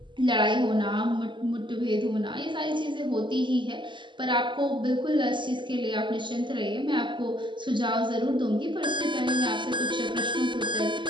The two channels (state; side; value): late; left; 0.23 ms